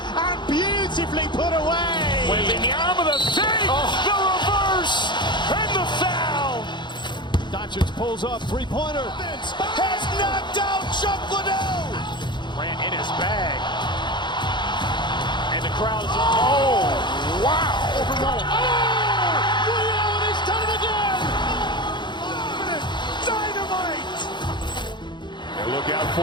beautifully put away. Waving the arm of the fake, the reverse, and the foul. Doncic pulls up, three-pointer. Has knocked out Chuck Liddell. Ran in his bag. And the crowd is, oh, wow. Ray Allen has done it again. Dynamite. And look out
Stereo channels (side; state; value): right; late; 0.22 ms